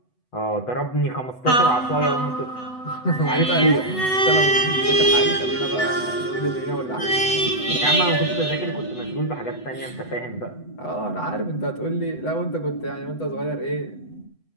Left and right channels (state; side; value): late; right; 8.0 ms